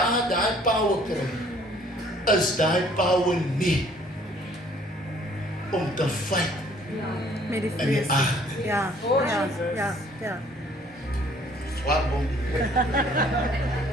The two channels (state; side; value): normal; both; correlation 0.58